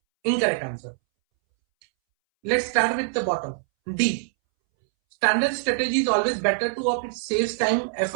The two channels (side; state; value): left; silent; 62 dB below the other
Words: incorrect answer. Let's start with the bottom. D. Standard strategy is always better to opt. It saves time,